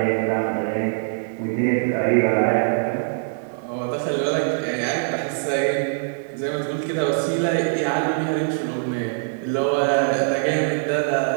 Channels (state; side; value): silent; left; digital silence